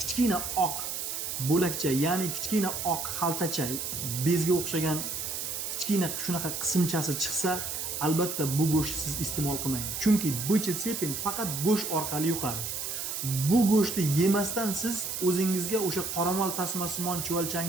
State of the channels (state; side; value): noise; right; hiss, 4 dB below the sound